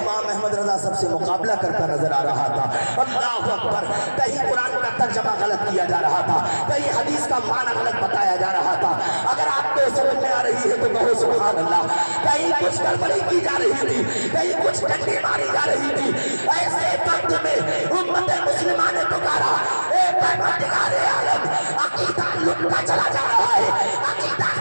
अहमद रज़ा सबसे मुकाबला करता नजर आ रहा था। अल्लाहु अकबर। कहीं कुरान का तर्जमा गलत किया जा रहा था, कहीं हदीस का माना गलत बताया जा रहा था। अगर आपको समझ में आ रही है तो कहो सुभान अल्लाह। कहीं कुछ गड़बड़ी की जा रही थी, कहीं कुछ डंडी मारी जा रही थी, ऐसे वक्त में उम्मत मुस्लिमा ने पुकारा, ए परवरदिगार आलम, अकीदा लुटता चला जा रहा है, अकीदा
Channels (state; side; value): inverted; both; correlation -1.00